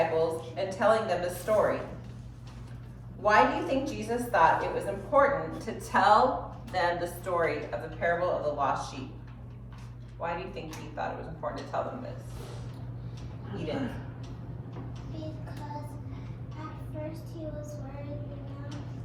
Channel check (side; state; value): both; identical; correlation 1.00